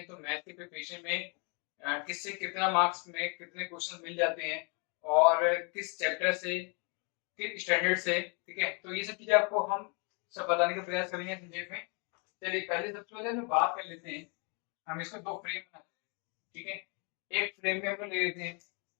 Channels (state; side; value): quieter; right; 35.0 dB